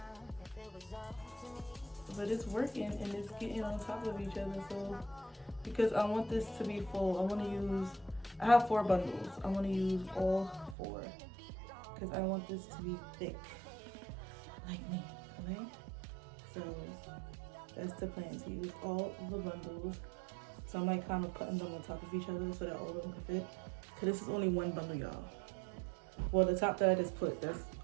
But it's working and it's getting on top of each other. So because I want this to be full, I have 4 bundles. I want to use all 4 because I want this to be thick like me, okay? So that's the plan, to use all the bundles. So I'm like kind of putting them on top of each other so that all of them can fit. Cause this is only one bundle, y'all. Well, the top that I just put, that's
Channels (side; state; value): left; drops out; at 10.8 s